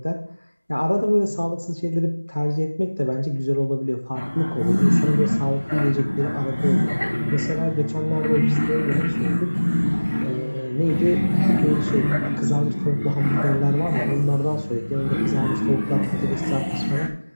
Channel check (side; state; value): both; inverted; correlation -1.00